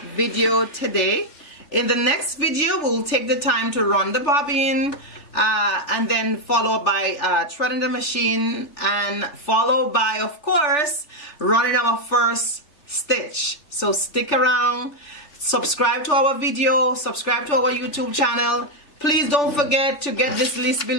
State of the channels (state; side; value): late; right; 3.4 ms